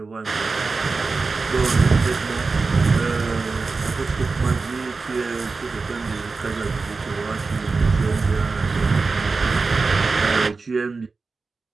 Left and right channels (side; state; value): left; quieter; 4.2 dB